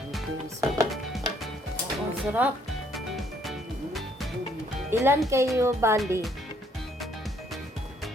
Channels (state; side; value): normal; both; correlation 0.66